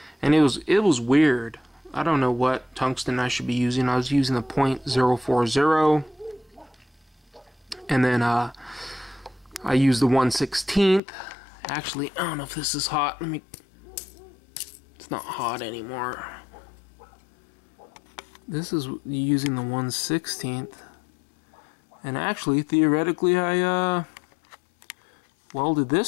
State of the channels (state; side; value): drops out; right; at 11.0 s